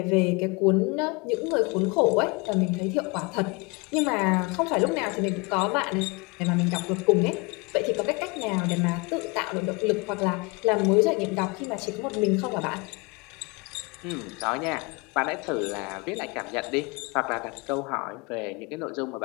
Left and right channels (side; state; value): right; quieter; 28.0 dB